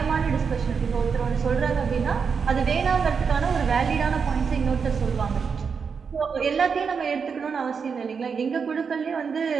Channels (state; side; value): quieter; left; 5.9 dB